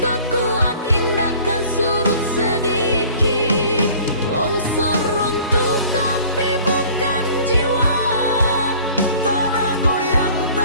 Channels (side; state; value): both; inverted; correlation -0.49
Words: kuat indahkan surut sedikit. Longsor runtuh tapi bukan jiwa, Tanah goyang